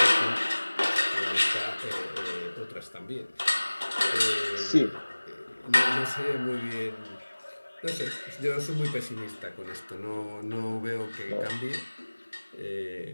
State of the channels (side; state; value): both; inverted; correlation -1.00